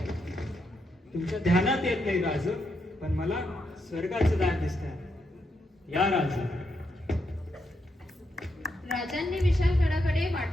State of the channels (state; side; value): normal; both; correlation 0.81